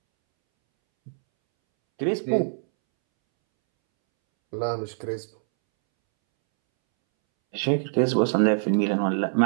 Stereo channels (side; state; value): left; silent; 63 dB below the other